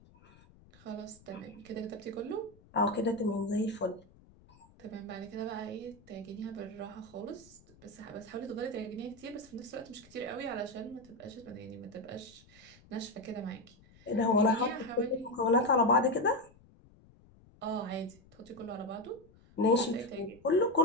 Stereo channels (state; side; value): noise; left; rumble, 26 dB below the sound